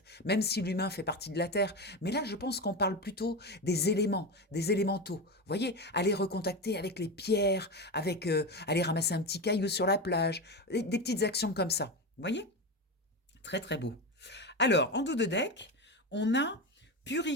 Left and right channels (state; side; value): normal; both; correlation 0.19